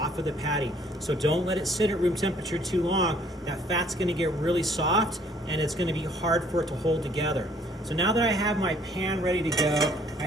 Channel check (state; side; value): normal; both; correlation 0.61